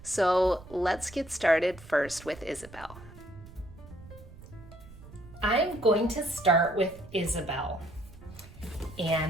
So let's get started first with Isabel. I'm going to start with Isabel.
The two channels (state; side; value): noise; right; rumble, 18 dB below the sound